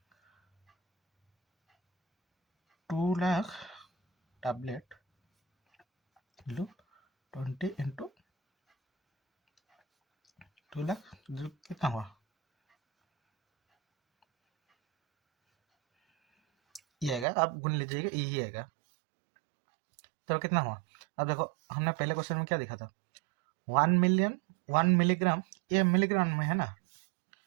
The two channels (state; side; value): drops out; left; at 17.2 s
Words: 2 lakh tablet 20 into 2 lakh कितना हुआ? ये आएगा, आप गुन लीजिएगा, यही आएगा। तो कितना हुआ? अब देखो हमने पहले क्वेश्चन में क्या देखा था, 1 मिलिग्राम, ये मिलीग्राम में है ना।